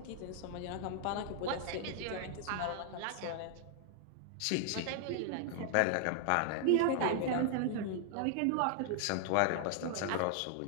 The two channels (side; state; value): both; different; correlation 0.00